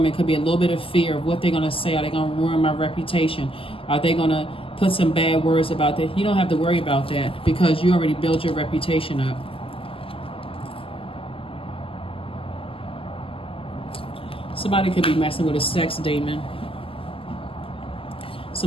could be a little bit of fear of what they're going to say. Are they going to ruin my reputation? Are they going to put some bad words about that? You don't have to worry about that because you already built your reputation up. Somebody could be messing with a sex demon.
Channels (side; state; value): right; late; 0.26 ms